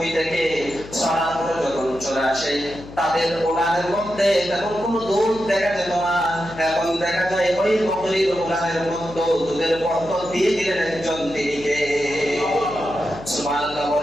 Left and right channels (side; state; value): left; noise; hum, 16 dB below the sound